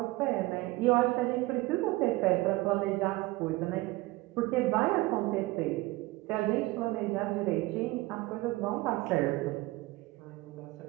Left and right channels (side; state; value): left; quieter; 20.3 dB